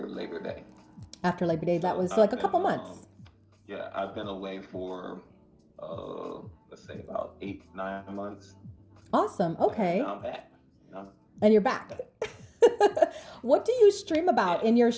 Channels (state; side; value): identical; both; correlation 1.00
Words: Labor Day. After Labor Day, that So was like I've a been couple months. yeah, I've been away for let's say about 8, 9 months, Awesome. and Okay. now I'm back. You know? And you're back. What do you stream about Yeah. in your